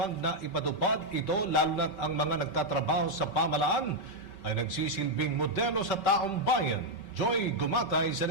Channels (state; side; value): late; right; 5.1 ms